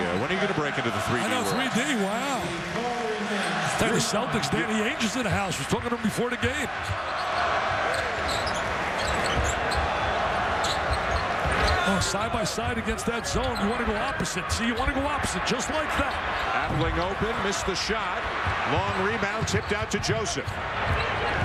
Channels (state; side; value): identical; both; correlation 1.00